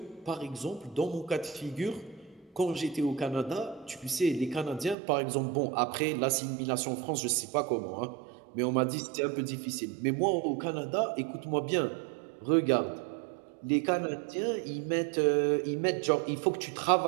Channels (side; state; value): left; drops out; at 5.0 s